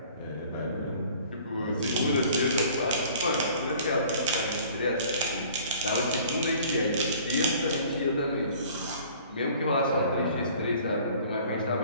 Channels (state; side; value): inverted; both; correlation -0.51